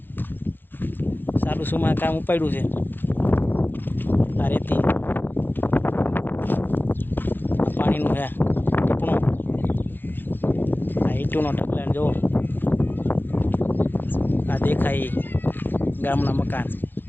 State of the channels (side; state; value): right; late; 0.095 ms